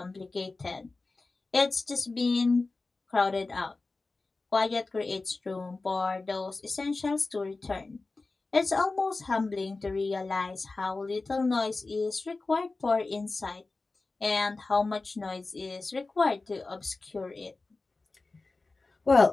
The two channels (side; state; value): right; quieter; 3.6 dB